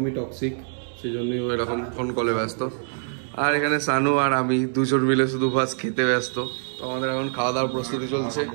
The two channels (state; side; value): silent; left; digital silence